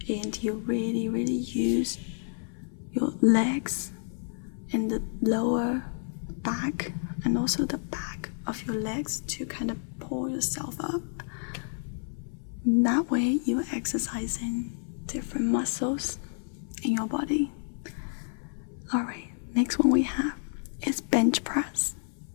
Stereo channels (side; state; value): right; silent; 58 dB below the other